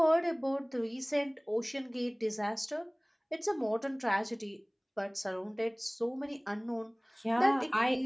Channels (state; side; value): identical; both; correlation 1.00